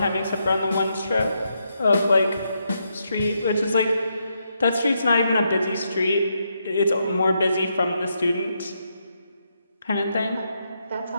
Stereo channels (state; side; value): inverted; both; correlation -0.80